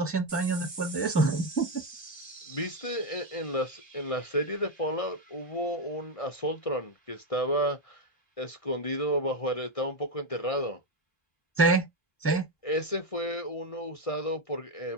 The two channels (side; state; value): right; late; 1.6 ms